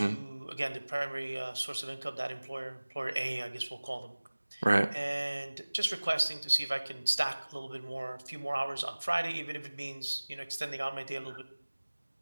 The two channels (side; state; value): both; inverted; correlation -1.00